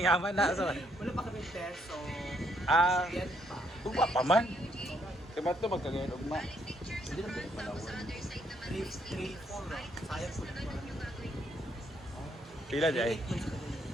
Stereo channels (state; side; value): normal; both; correlation 0.72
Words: na so. Wala pa kami peso. Yan pa. Ugma pa man. Kaya ito magkagayon ugma. Hindi na pwede palawan. 3-4 sayang po na. Pila di ay?